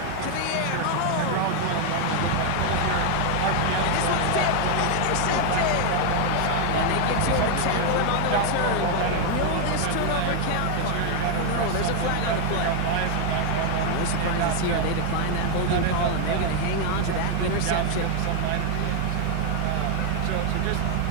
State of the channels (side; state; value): both; different; correlation 0.01